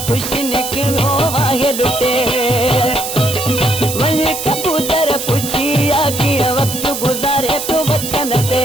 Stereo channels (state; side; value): noise; right; hiss, 6 dB below the sound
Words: ख़ुशि निकिरो आहे लुटे। वञी कबूतर पुछिया कीअं वक्त गुज़ारे तो वतन ते।